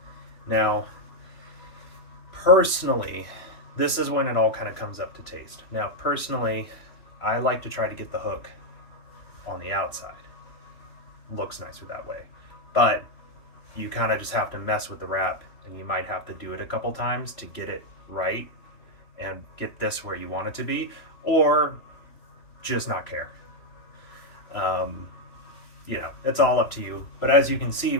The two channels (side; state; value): right; late; 3.0 ms